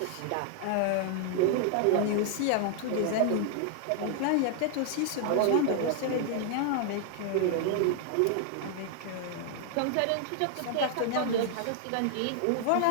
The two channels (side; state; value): both; different; correlation 0.00